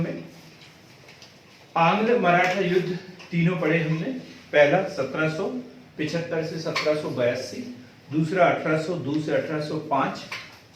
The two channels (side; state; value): both; identical; correlation 1.00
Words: आंग्ल मराठा युद्ध तीनों पढ़े हमने। पहला 1775 से 1782, दूसरा 1802 से 1805